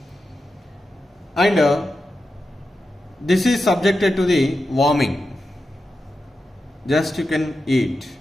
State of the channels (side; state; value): both; normal; correlation 0.90